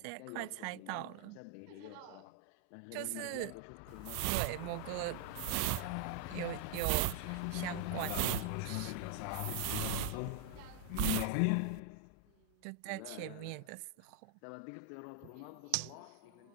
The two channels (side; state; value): both; different; correlation 0.00